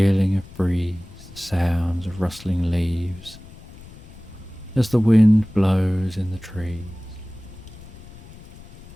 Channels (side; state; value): left; noise; rumble, 19 dB below the sound